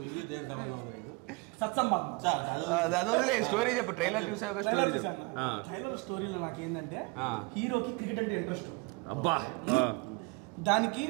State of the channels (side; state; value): left; quieter; 27.9 dB